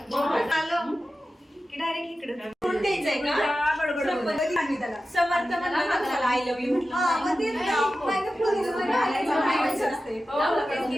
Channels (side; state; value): both; normal; correlation 0.93